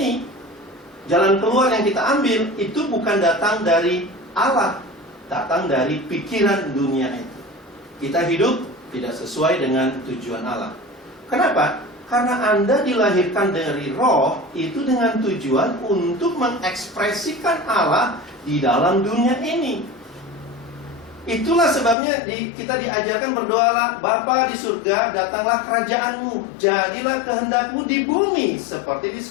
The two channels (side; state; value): right; drops out; at 22.0 s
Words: jalan keluar yang kita ambil, itu bukan datang dari Allah, datang dari pikiran dunia itu. Kita hidup tidak sesuai dengan tujuan Allah. Kenapa? Karena Anda dilahirkan dari roh, itu dengan tujuan untuk mengekspresikan Allah di dalam dunia ini. Itulah sebabnya kita diajarkan berdoalah, Bapa di surga, datanglah kerajaanmu, jadilah kehendakmu di bumi seperti di